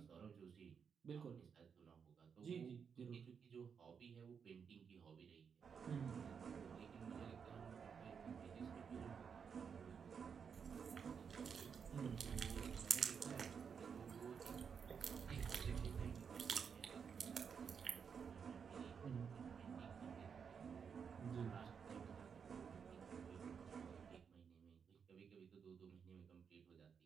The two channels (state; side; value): quieter; left; 6.6 dB